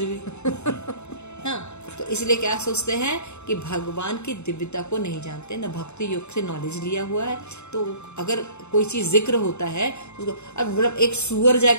हाँ, तो इसलिए क्या सोचते हैं कि भगवान की दिव्यता को नहीं जानते, न भक्ति योग से नॉलेज लिया हुआ है। तो अगर कोई चीज जिक्र होता है उसको, अब मतलब एक सुअर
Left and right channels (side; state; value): right; late; 0.82 ms